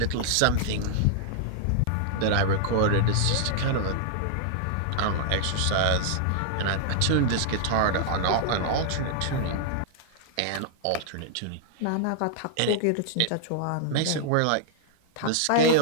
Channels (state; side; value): different; both; correlation -0.01